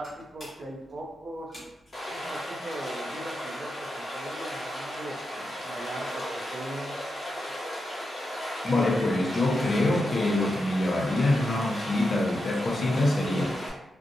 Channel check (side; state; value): both; normal; correlation 0.87